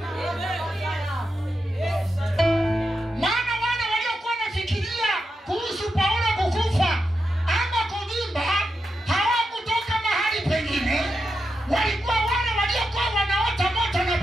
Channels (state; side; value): normal; both; correlation 0.88